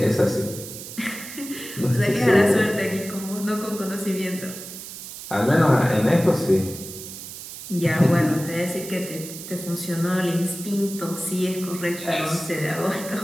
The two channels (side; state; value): right; noise; hiss, 11 dB below the sound